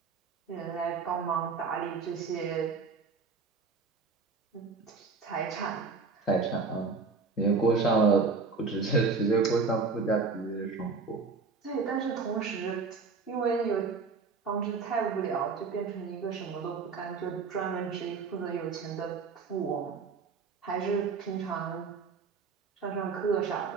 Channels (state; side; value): quieter; left; 4.7 dB